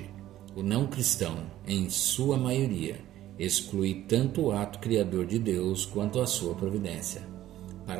O não cristão, em sua maioria, exclui tanto o ato criador de Deus quanto a sua providência.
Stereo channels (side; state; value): left; quieter; 13.5 dB